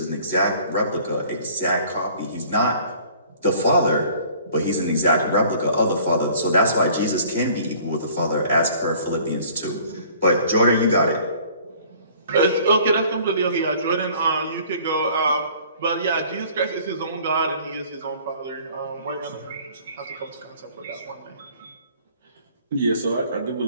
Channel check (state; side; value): inverted; both; correlation -0.53